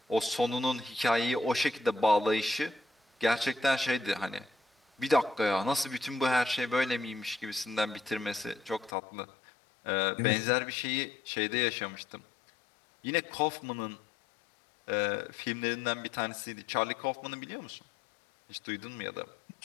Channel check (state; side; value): drops out; right; at 9.0 s